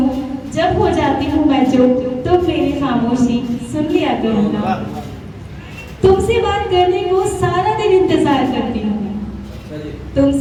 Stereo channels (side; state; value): both; identical; correlation 1.00